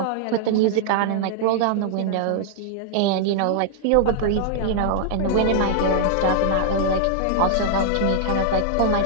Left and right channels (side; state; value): both; different; correlation -0.01